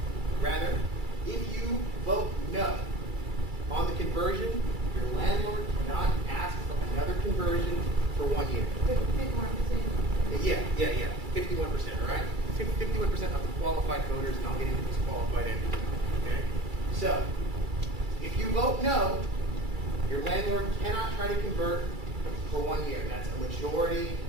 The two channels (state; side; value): late; left; 2.3 ms